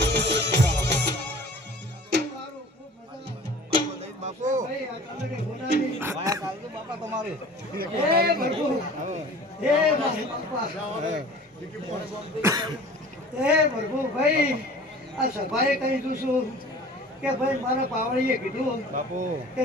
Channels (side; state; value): both; normal; correlation 0.44